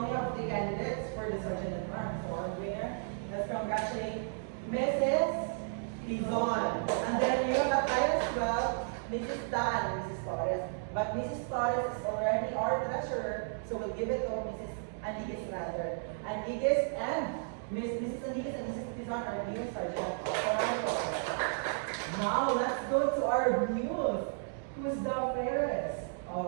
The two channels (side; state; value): left; silent; digital silence